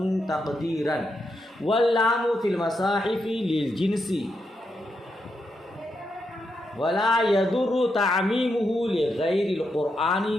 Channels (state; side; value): normal; both; correlation 0.83